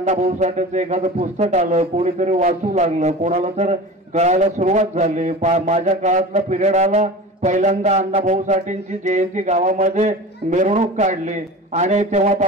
साठेंचं एखादं पुस्तक आलं, कोणीतरी वाचू लागलं, कोणाला तर कळायला सुरुवात झाली। माझ्या काळातला पिरियड आला, पहिल्यांदा अण्णाभाऊ साठेंची जयंती गावामध्ये मिरवणूक काढली आणि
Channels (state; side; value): normal; both; correlation 0.34